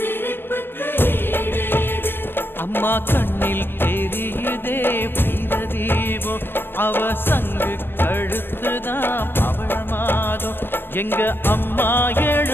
அம்மா கண்ணில் தெரியுதே வீரதீபம், அவ சங்கு கழுத்துதான் பவளமாதம். எங்க அம்மா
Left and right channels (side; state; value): right; late; 0.099 ms